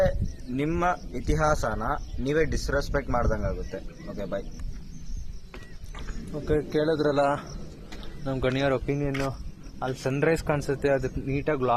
ನಿಮ್ಮ ಇತಿಹಾಸನ ನೀವೇ ಡಿಸ್ರೆಸ್ಪೆಕ್ಟ್ ಮಾಡ್ದಂಗಾಗುತ್ತೆ. ಓಕೆ, ಬಾಯ್. ಓಕೆ, ಕೇಳಿದ್ರಲ್ಲ ನಮ್ಮ ಗಣಿಯವ್ರ ಒಪಿನಿಯನ್ನು. ಅಲ್ಲಿ ಸನ್ರೈಸ್ ಕಾಣಿಸುತ್ತೆ, ಅದಕ್ಕೆ ನೀಟಾಗಿ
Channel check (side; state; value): both; identical; correlation 1.00